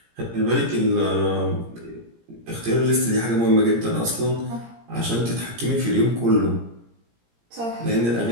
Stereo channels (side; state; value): left; late; 17 ms